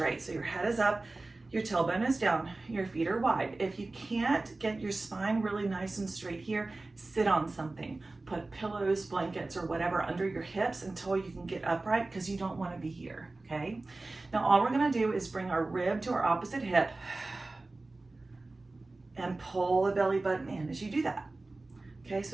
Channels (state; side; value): quieter; left; 3.2 dB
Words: So your head is up, your tailbone is down, your feet are wide. If you can't get your spine really nice and straight here, sit on something. Put pillows, blankets, or whatever under your hips until you can get upright, because you don't want to be here, okay? Now all we're gonna do is bring our rib to our opposite hip and pull the belly button in as you do that. Okay, so